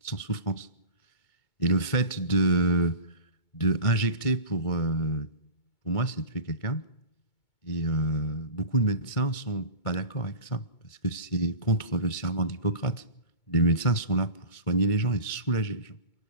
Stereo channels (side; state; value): right; late; 2.2 ms